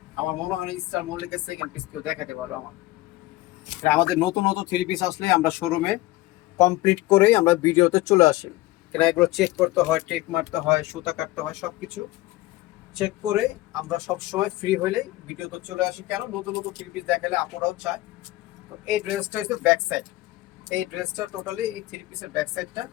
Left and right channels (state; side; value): quieter; right; 18.1 dB